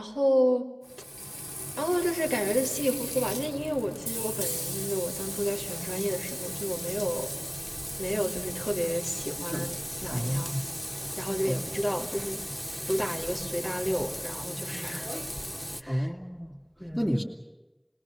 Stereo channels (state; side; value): identical; both; correlation 1.00